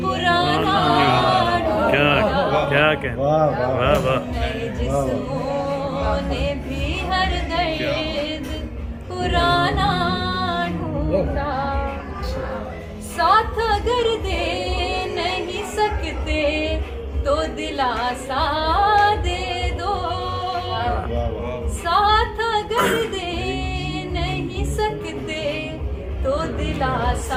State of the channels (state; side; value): identical; both; correlation 1.00